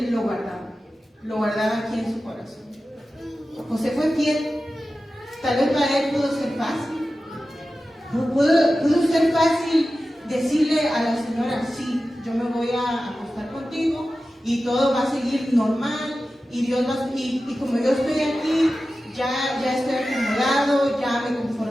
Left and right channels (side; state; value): both; normal; correlation 0.94